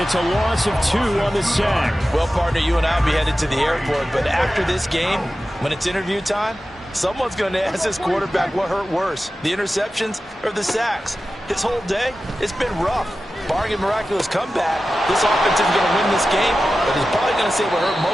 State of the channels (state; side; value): normal; both; correlation 0.94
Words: it's a loss of 2 on the sack. Well, partner, you and I will be headed to the airport, but after this game, when it's interview time, someone's going to ask this quarterback what hurt worse, the interceptions or the sacks. His whole day, it's been rough. Barring a miraculous comeback, this offense is going to win this game, but he's probably going to say what hurt